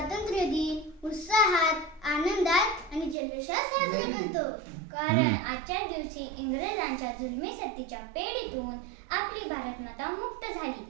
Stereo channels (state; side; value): drops out; left; at 3.2 s